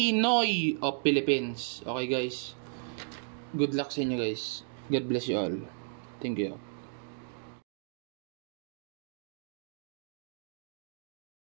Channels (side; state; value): left; silent; digital silence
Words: of Philippines. Okay guys. Good luck sa inyo guys. God bless you all. Thank you.